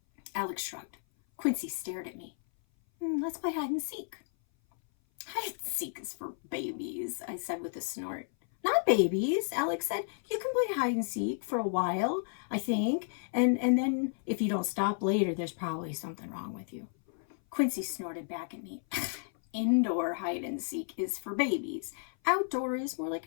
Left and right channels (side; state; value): right; silent; 56 dB below the other